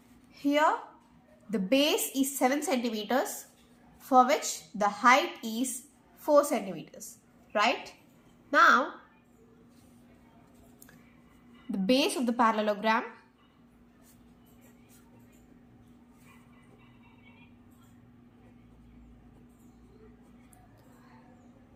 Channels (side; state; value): both; identical; correlation 1.00